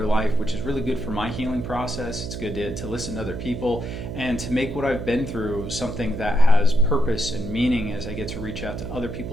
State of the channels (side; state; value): right; noise; hum, 7 dB below the sound